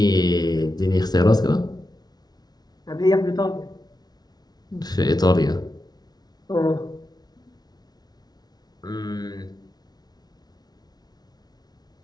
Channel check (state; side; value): late; right; 0.19 ms